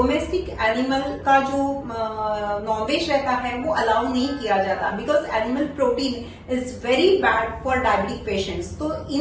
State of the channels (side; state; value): both; identical; correlation 1.00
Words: एनिमल का जो नॉनवेज रहता है वो अलाउ नहीं किया जाता, because animal protein is very bad for diabetic patients. तो